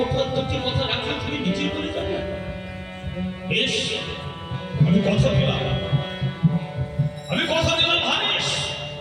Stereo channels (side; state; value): both; identical; correlation 1.00